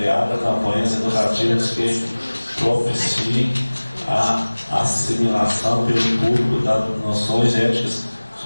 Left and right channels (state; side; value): inverted; both; correlation -1.00